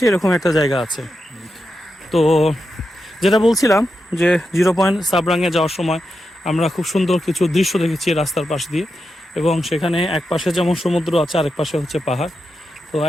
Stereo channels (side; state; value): both; normal; correlation 0.88